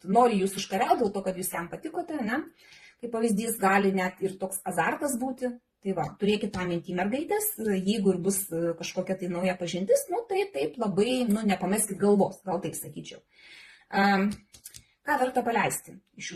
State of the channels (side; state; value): both; identical; correlation 1.00